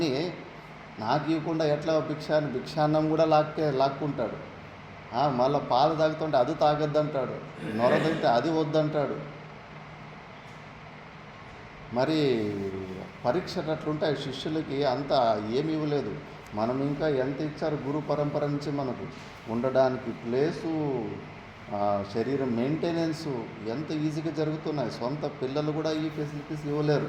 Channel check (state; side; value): identical; both; correlation 1.00